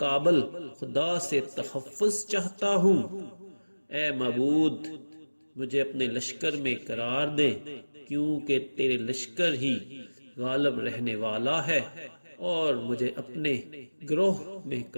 خدا سے تحفظ چاہتا ہوں۔ اے معبود، مجھے اپنے لشکر میں قرار دے، کیونکہ تیرے لشکر ہی غالب رہنے والا ہے، اور مجھے اپنے گروہ میں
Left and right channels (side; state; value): both; inverted; correlation -1.00